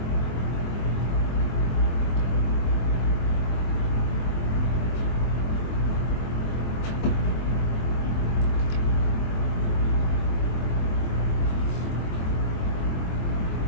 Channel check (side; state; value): right; late; 23 ms